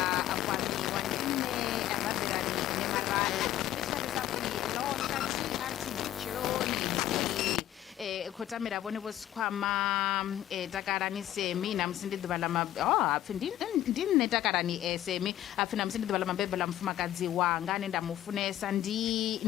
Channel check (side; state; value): right; quieter; 12.8 dB